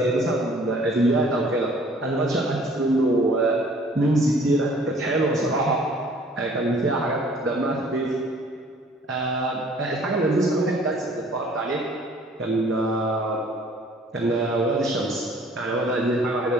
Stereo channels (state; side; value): normal; both; correlation 0.55